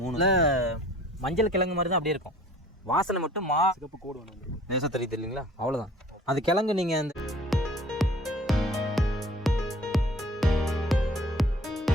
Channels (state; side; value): normal; both; correlation 0.50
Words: மூணுல மஞ்சள் கிழங்கு மாதிரி தான் அப்படியே இருக்கும். வாசனை மட்டும் சிகப்பு கோடு வேணும். நேசம் தெரியுது இல்லைங்களா? அவ்வளோதான். அது கிழங்கு நீங்கள் அந்த